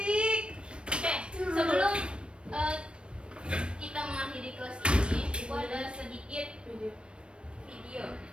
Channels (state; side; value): late; left; 0.057 ms